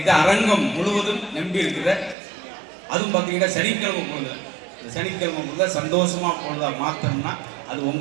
அரங்கம் முழுவதும் நம்பி இருக்கிற, அதுவும் பார்த்தீங்கன்னா சனிக்கிழமை பொழுது, இந்த சனிக்கிழமை பொழுது சந்தோஷமா பொழுதா மாற்றணும்னா அது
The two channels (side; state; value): left; drops out; at 2.1 s